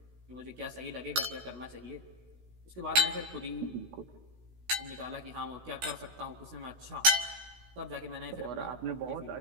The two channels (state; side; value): late; left; 16 ms